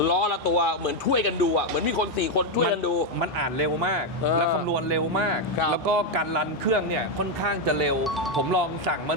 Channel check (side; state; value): both; normal; correlation 0.04